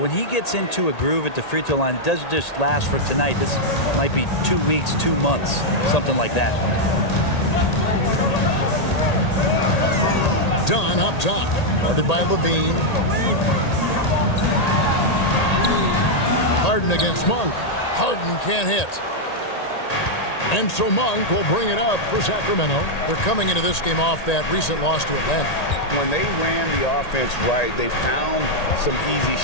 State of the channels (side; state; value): right; late; 1.8 ms